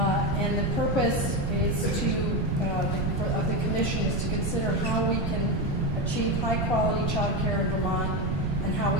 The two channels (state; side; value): noise; right; rumble, 3 dB below the sound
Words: the purpose is of the commission is to consider how we can achieve high-quality child care in Vermont and how